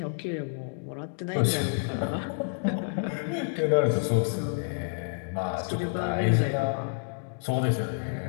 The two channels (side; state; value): right; silent; digital silence